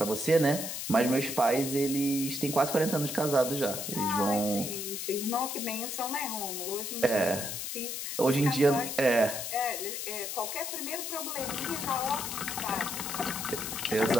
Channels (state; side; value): noise; left; hiss, 5 dB below the sound